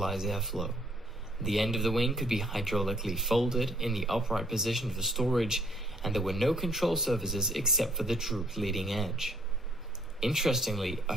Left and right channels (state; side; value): normal; both; correlation 0.64